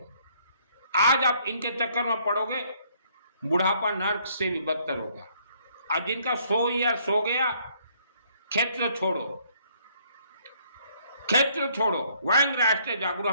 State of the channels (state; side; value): inverted; both; correlation -0.65